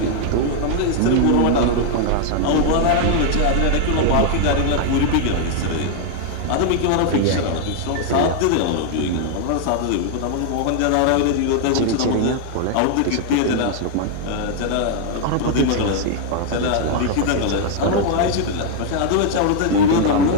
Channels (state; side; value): different; both; correlation 0.00